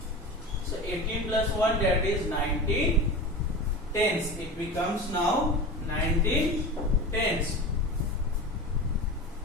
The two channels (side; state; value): both; normal; correlation 0.30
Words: So 18 plus 1, that is 19 tens. It becomes now 19 tens.